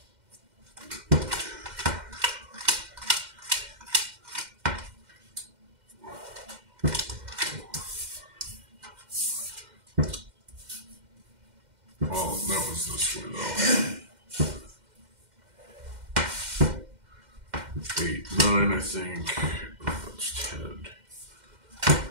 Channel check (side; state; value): left; late; 2.1 ms